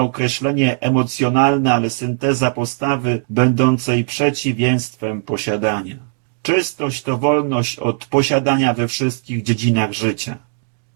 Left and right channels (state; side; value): silent; left; 67 dB below the other